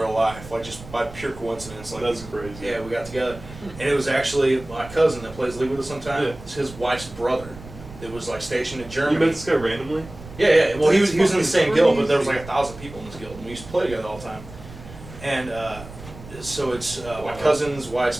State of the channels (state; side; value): noise; right; rumble, 16 dB below the sound